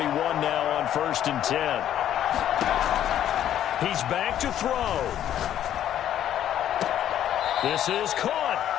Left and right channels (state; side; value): quieter; right; 11.0 dB